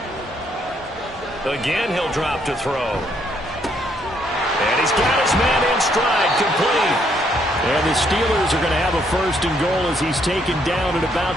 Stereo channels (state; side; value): normal; both; correlation 0.71